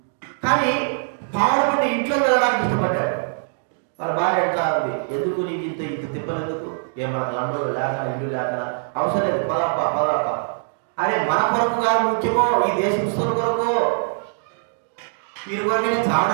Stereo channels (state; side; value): silent; left; digital silence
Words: కానీ పాడుబడి ఇంట్లో వెళ్ళడానికి ఇష్టపడ్డాడు. వాళ్ళ భార్య అంటా ఉంది, ఎందుకు నీకు ఇంత తిప్పలు ఎందుకు? ఏమన్నా లండన్లో లేక ఇల్లు లేక అవసరం లేదు, పదప్ప. అరే మన కొరకు కాదు ముఖ్యమో, ఈ దేశస్తుల కొరకు, వీరి కొరకే